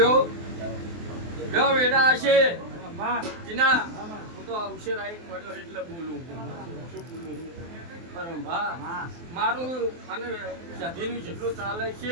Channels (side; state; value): left; late; 23 ms